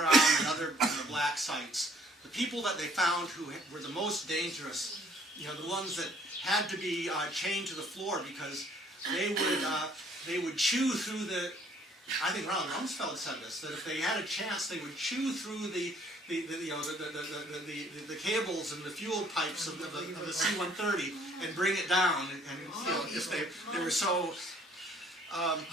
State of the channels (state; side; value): normal; both; correlation 0.60